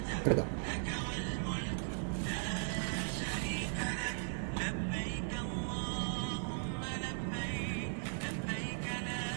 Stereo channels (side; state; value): left; silent; digital silence